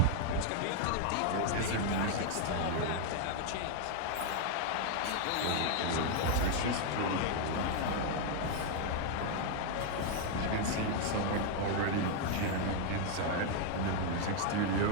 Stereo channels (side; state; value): both; different; correlation 0.00